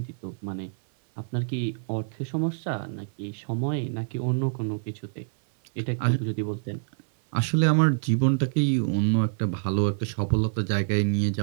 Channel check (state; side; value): silent; left; 58 dB below the other